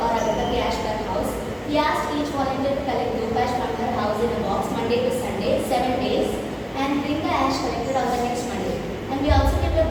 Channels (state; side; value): identical; both; correlation 1.00